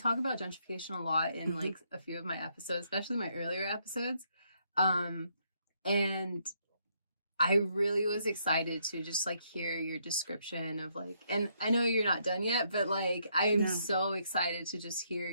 about gentrification a lot in like a few of my episodes, especially my earlier episodes. And I really was excited to just like hear your description of like, and I know you're not done yet, but like I'm so excited to just hear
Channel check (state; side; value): inverted; both; correlation -0.73